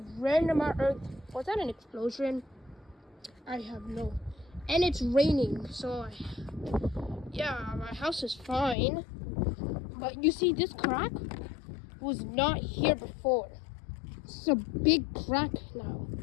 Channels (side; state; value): right; drops out; at 8.8 s